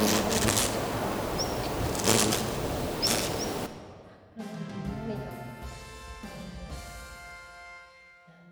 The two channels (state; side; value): identical; both; correlation 1.00